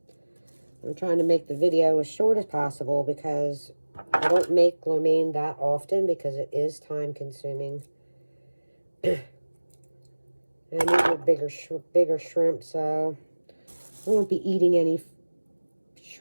I'm trying to make the video as short as possible because I don't make lo mein that often because it is time consuming. And these are bigger shrimp, so I won't be eating any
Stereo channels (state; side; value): inverted; both; correlation -1.00